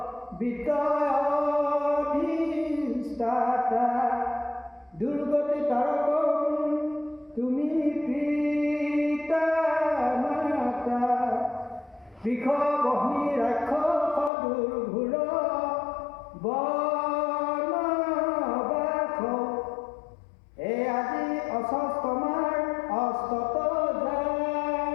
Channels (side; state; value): right; drops out; at 14.3 s